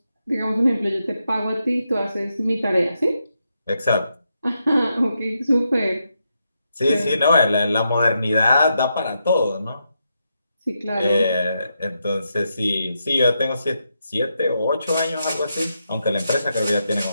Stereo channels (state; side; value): inverted; both; correlation -0.83